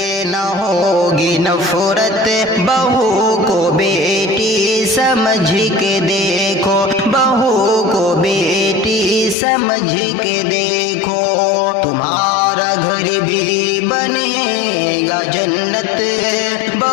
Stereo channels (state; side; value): drops out; right; at 9.3 s